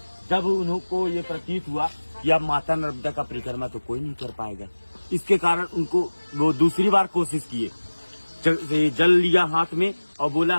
जब उनको ये प्रतीत हुआ कि अब माता नर्मदा का परिक्रमा तो कोई नहीं कर पाएगा, इसके कारण उनको वो दूसरी बार कोशिश किए। जल लिया हाथ में और बोला,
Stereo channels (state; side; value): inverted; both; correlation -1.00